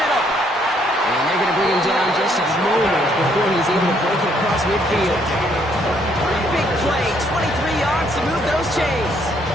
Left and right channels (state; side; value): normal; both; correlation 0.68